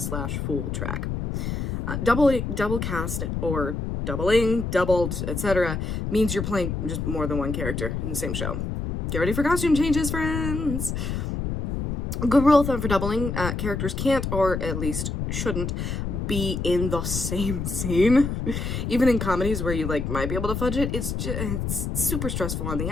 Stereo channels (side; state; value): left; noise; rumble, 3 dB below the sound